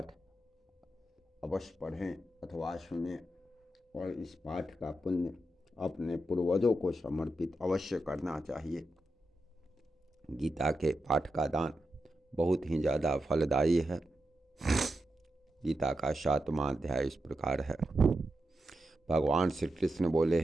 अवश्य पढ़ें अथवा सुनें और इस पाठ का पुण्य अपने पूर्वजों को समर्पित अवश्य करना चाहिए। गीता के पाठ का दान बहुत ही ज़्यादा फलदायी है। गीता का 7वां अध्याय इस प्रकार है। भगवान श्री कृष्ण बोले,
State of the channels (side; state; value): both; normal; correlation 0.88